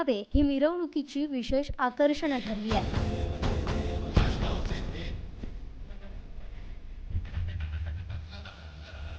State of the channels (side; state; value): both; identical; correlation 1.00